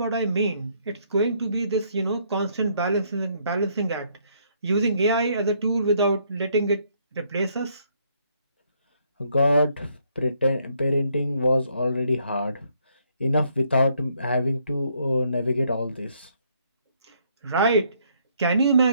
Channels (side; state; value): both; inverted; correlation -0.70